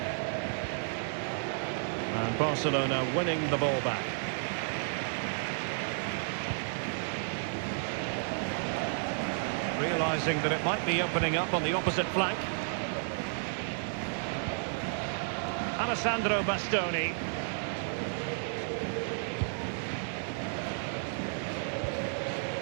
And And Barcelona winning the ball back. Realising that it might be opening up on the opposite flank. Alessandro Bastoni.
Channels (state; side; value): silent; left; 56 dB below the other